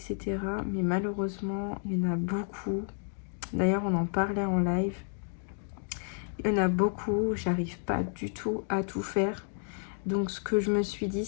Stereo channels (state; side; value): silent; right; 57 dB below the other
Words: Mais malheureusement, il y en a beaucoup. D'ailleurs, on en parlait en live. Il y en a beaucoup, j'arrive pas du tout à tout faire. Donc ce que je me suis dit,